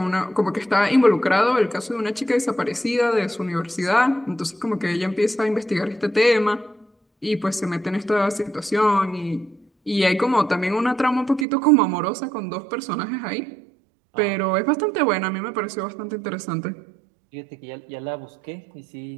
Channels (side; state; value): left; drops out; at 11.5 s